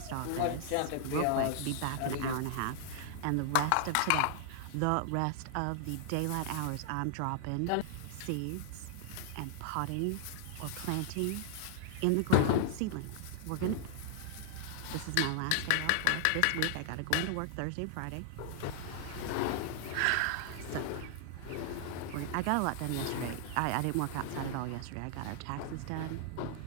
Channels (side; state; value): both; different; correlation 0.00